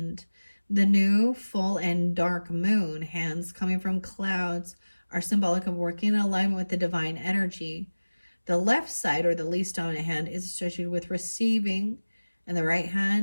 The new, full, and dark moon hands coming from clouds are symbolic of working in alignment with the divine energy. The left side, or the least dominant hand, is associated with receiving, and the right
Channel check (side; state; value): both; inverted; correlation -1.00